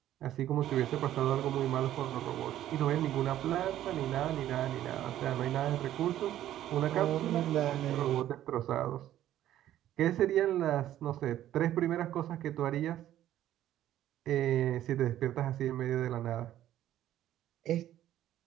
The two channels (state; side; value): quieter; left; 12.5 dB